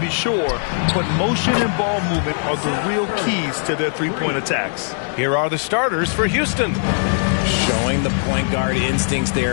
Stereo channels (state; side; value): silent; right; 62 dB below the other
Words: sure, but motion and ball movement are the real keys to their three-point attacks. Here are the starters for Houston. Showing the point guard instincts